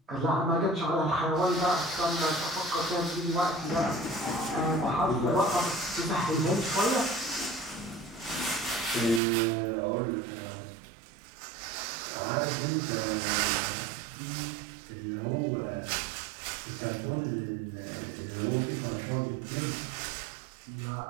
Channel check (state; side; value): drops out; left; at 9.2 s